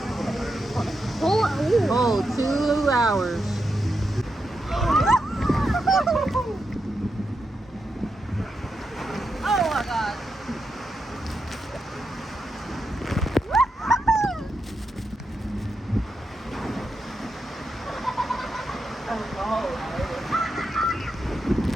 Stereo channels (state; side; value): normal; both; correlation 0.86